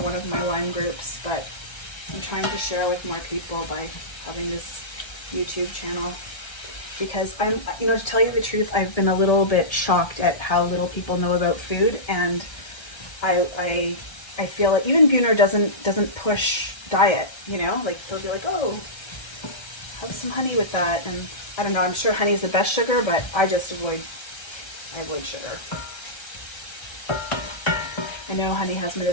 of my Lyme groups, but I'm trying to share with more people by having this YouTube channel. Because to tell you the truth, I've been a little bit shocked at how little people know about food, and I feel like even Gunnar doesn't push diet, like they'll be like, oh, have some honey with that, and I don't know, I'm sure honey is the best sugar, but I just avoid sugar. I know honey has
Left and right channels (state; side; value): late; right; 1.3 ms